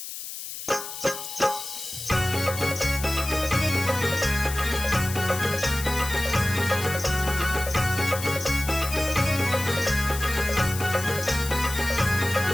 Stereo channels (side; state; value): left; noise; hiss, 9 dB below the sound